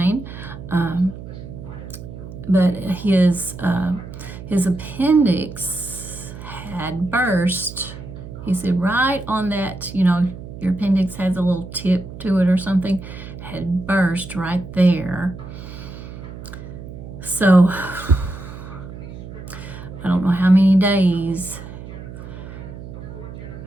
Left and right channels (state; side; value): noise; right; hum, 12 dB below the sound